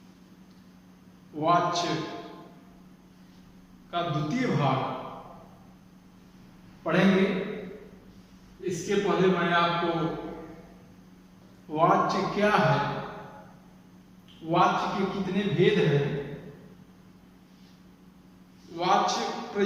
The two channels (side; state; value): both; identical; correlation 1.00